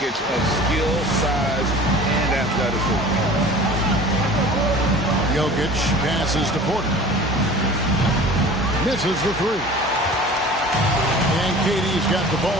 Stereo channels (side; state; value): both; normal; correlation 0.42